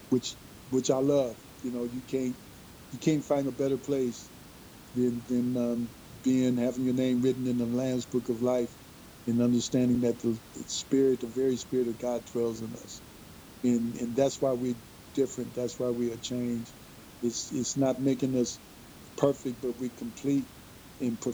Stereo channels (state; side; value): identical; both; correlation 1.00